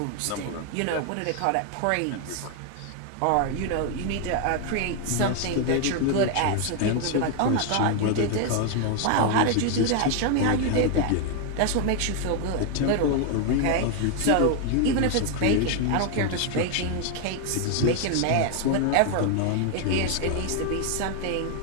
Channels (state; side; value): different; both; correlation 0.00